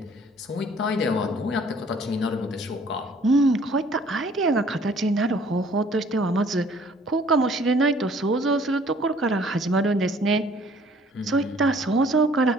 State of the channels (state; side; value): normal; both; correlation 0.57